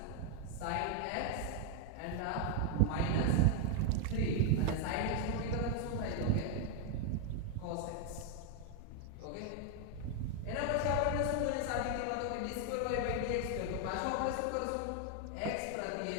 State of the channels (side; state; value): both; different; correlation 0.01